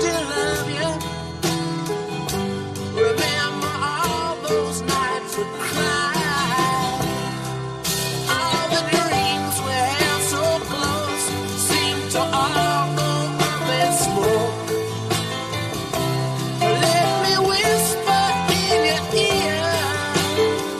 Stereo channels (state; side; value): identical; both; correlation 1.00